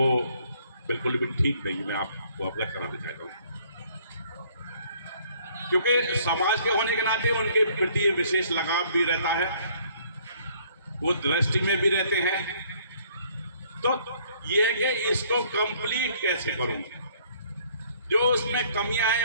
बिल्कुल भी ठीक नहीं, मैं आपको अवगत कराना चाहता हूँ। क्योंकि समाज के होने के नाते उनके प्रति विशेष लगाव भी रहता है, वो दृष्टि में भी रहते हैं। तो ये है कि इसको कंप्लीट कैसे करूं, जो उसमें कमियां हैं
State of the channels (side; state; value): both; inverted; correlation -0.61